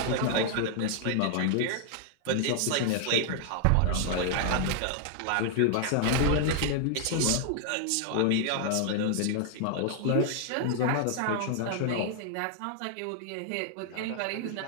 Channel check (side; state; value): both; different; correlation 0.00